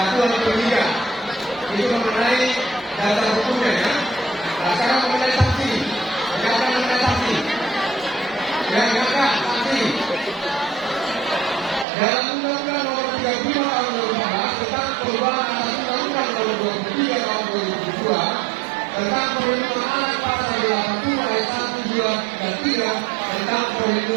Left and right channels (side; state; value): left; drops out; at 11.9 s